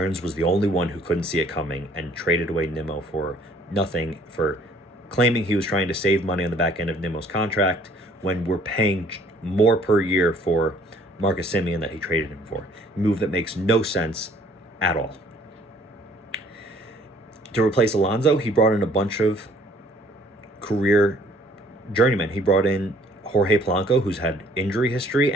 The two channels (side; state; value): both; normal; correlation 0.58